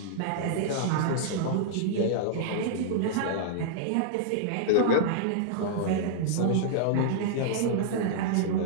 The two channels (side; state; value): both; different; correlation -0.02